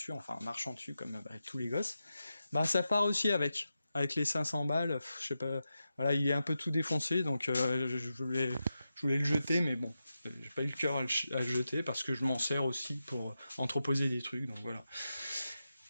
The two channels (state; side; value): inverted; both; correlation -0.90